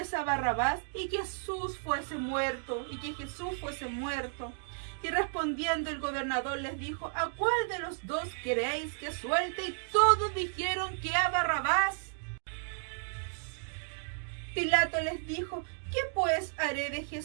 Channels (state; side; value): silent; left; digital silence